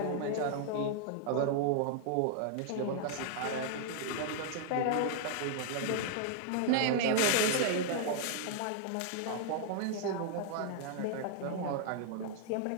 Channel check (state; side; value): different; both; correlation 0.00